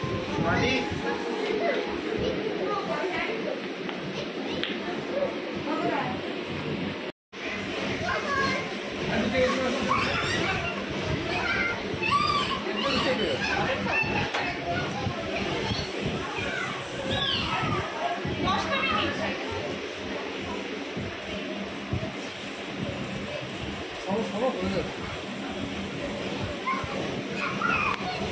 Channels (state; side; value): identical; both; correlation 1.00